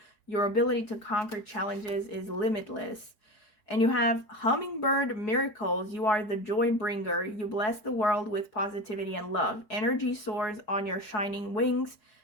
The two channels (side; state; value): right; late; 4.7 ms